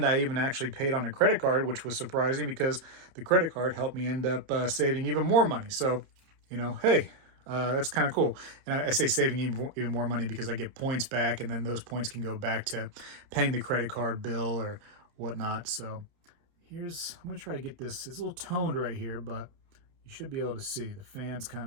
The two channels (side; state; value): left; late; 30 ms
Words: I even actually paid on a credit card, which was surprising because the credit card helped me end up saving even more money. So, you know, hey, that's kind of cool. And I say saving even more money because I get points back, and then those points can go back to paying the credit card bill or whatnot. So I'm going to try to get this. It's a little toned right here, but you should be able to see the fan's